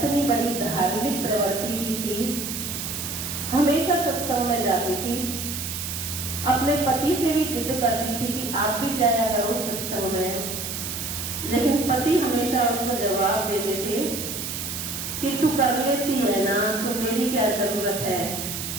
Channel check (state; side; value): noise; right; hiss, 5 dB below the sound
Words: बड़ी धार्मिक प्रवृत्ति की थी, हमेशा सत्संग में जाती थी, अपने पति से भी जिद करती थी कि आप भी जाया करो सत्संग में, लेकिन पति हमेशा उसको जवाब देते थे कि तू कर लेती है ना, तो मेरी क्या जरूरत है,